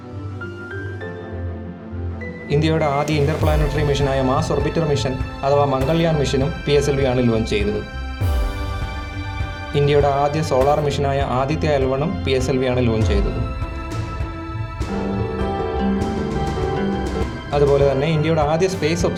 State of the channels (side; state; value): both; identical; correlation 1.00